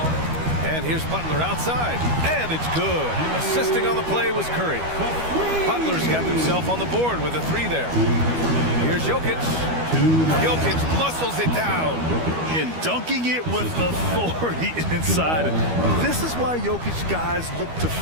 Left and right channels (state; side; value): late; left; 12 ms